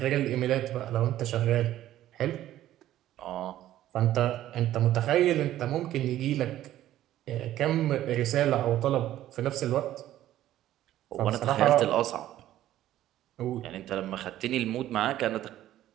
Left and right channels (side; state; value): left; quieter; 13.3 dB